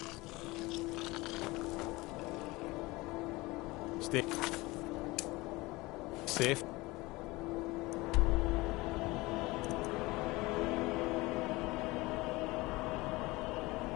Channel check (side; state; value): right; quieter; 21.7 dB